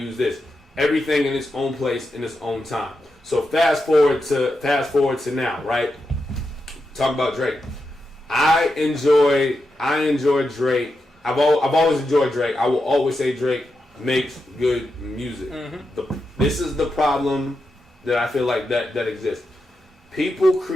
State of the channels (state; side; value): normal; both; correlation 0.87